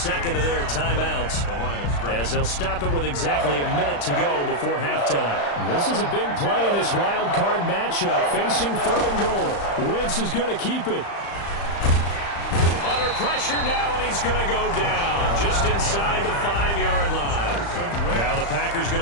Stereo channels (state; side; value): late; right; 35 ms